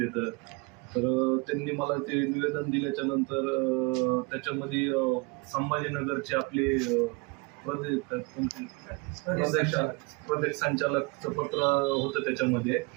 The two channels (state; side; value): quieter; left; 28.4 dB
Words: येतं. तर त्यांनी मला ते निवेदन दिल्याच्या नंतर त्याच्यामध्ये संभाजीनगरचे आपले प्रदेश संचालकचं पत्र होतं, त्याच्यामध्ये